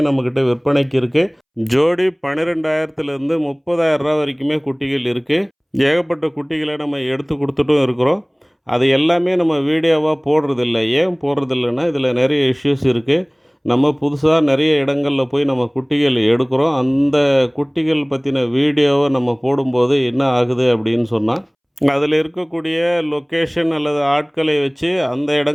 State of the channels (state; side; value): identical; both; correlation 1.00